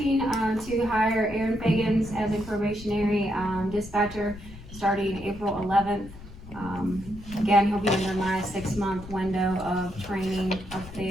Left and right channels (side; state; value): left; noise; rumble, 16 dB below the sound